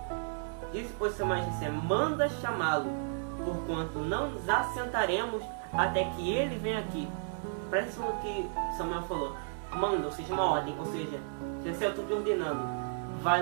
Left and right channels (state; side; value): silent; left; 56 dB below the other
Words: Disse pois Samuel a Jessé: manda chamá-lo, porquanto não nos assentaremos até que ele venha aqui. Parece o que Samuel falou. Manda, ou seja, uma ordem. Ou seja, Jessé, eu estou te ordenando.